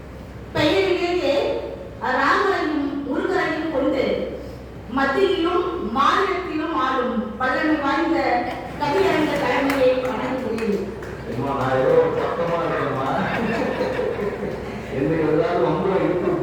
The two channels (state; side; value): identical; both; correlation 1.00